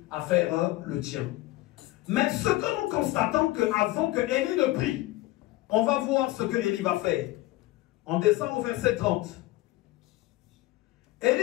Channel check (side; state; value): right; quieter; 17.8 dB